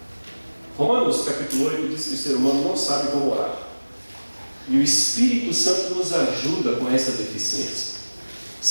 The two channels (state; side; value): inverted; both; correlation -1.00